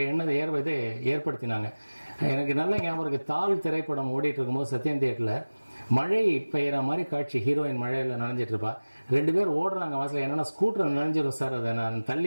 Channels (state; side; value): inverted; both; correlation -1.00